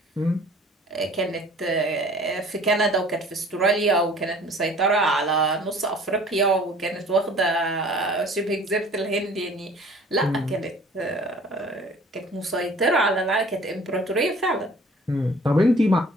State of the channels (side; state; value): both; normal; correlation 0.50